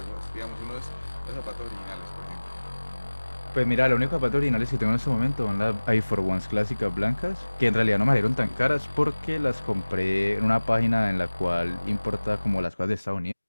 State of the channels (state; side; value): inverted; both; correlation -1.00